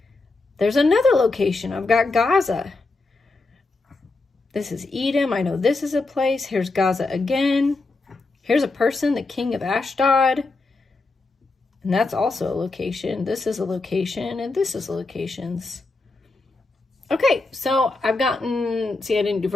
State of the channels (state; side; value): quieter; right; 3.4 dB